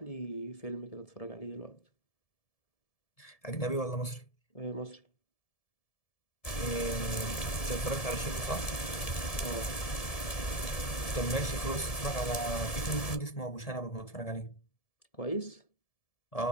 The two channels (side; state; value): right; late; 1.7 ms